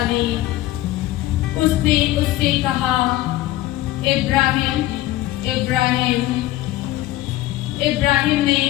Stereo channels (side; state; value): right; quieter; 15.8 dB